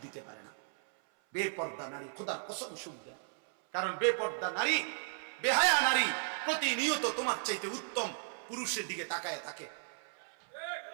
দিতে পারে না। বেপর্দা নারী খোদার কসম সুখ দেয়, কারণ বেপর্দা নারী, বেহায়া নারী প্রতিনিয়ত তোমার চাইতে উত্তম পুরুষের দিকে তাকায় থাকে।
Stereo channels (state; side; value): silent; left; 54 dB below the other